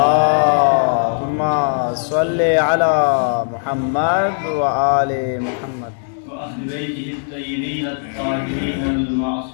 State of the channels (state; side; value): silent; right; digital silence